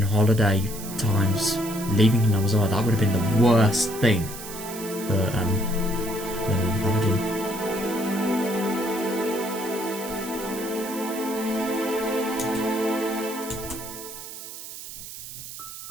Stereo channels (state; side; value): noise; right; hiss, 11 dB below the sound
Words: holiday times, leaving Hinamazawa, that would have been the worst thing for Babajin.